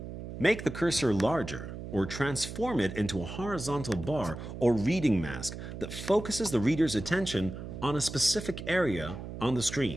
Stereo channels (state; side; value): noise; right; hum, 9 dB below the sound